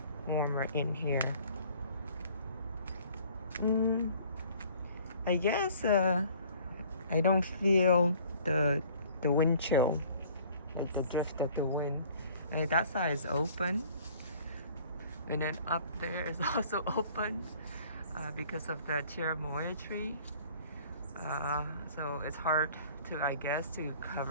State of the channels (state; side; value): inverted; both; correlation -0.53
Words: warmer in here. I guess I don't feel the wind chill, like the drift of the wind. And that side is open, and then up there is also open because of the Cherimoya tree. So it's hard to, I guess, to